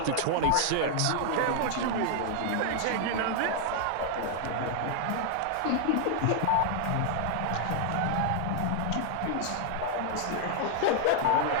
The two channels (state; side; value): different; both; correlation 0.00